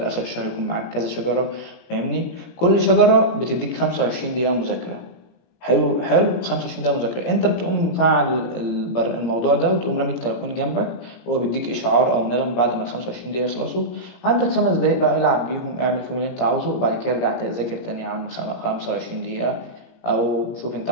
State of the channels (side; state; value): right; late; 17 ms